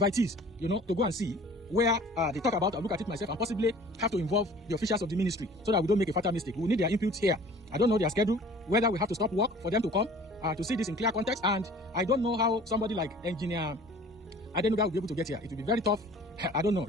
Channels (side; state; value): both; normal; correlation 0.48